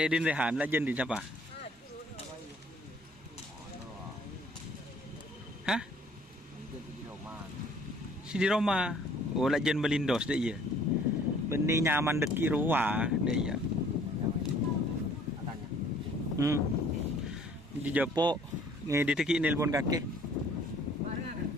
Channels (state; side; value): normal; both; correlation 0.57